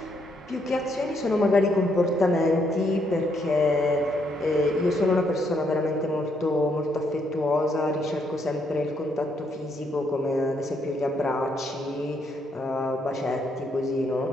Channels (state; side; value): normal; both; correlation 0.74